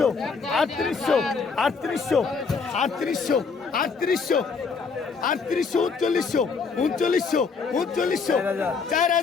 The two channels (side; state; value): right; quieter; 5.0 dB